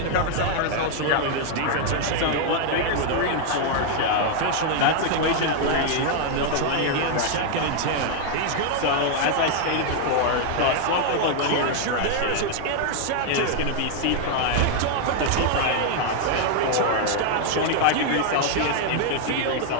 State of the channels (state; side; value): different; both; correlation 0.00